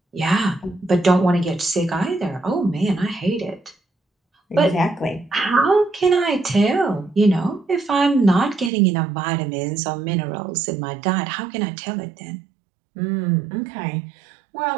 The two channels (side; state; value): left; drops out; at 8.7 s